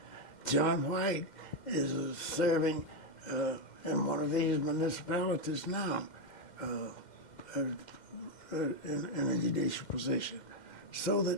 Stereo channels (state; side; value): late; right; 2.1 ms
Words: John White is serving in one of these municipalities now in a judicial position. So